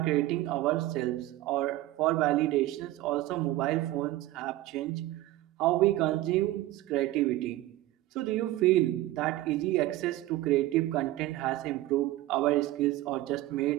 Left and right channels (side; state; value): left; quieter; 16.2 dB